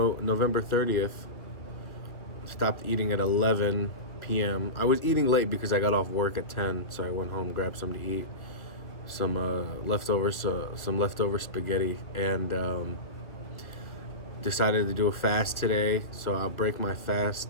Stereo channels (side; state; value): right; late; 1.9 ms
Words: November 30th. Stopped eating at 11 p.m. I was eating late because I got off work at 10, so I went home, grabbed something to eat, some leftovers, some leftover spaghetti, and decided to do a fast today. So I'll break my fast